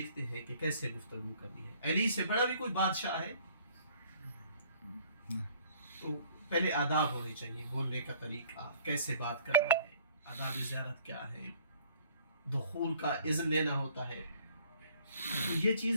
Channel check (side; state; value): both; inverted; correlation -0.57